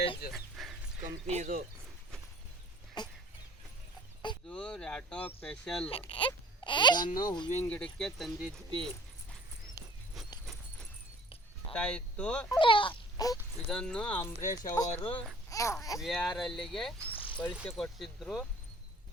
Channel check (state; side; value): normal; both; correlation 0.50